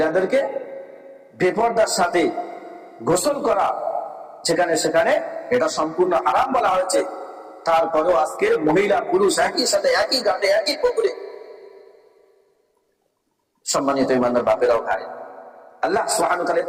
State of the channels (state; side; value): identical; both; correlation 1.00